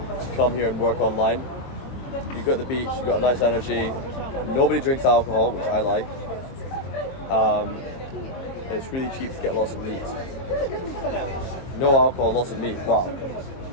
come here and work online. You've got the beach, you've got a nice energy, nobody drinks alcohol, which I like. It's really cheap to get lots of meat. No alcohol, lots of meat, wow.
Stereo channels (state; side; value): late; right; 23 ms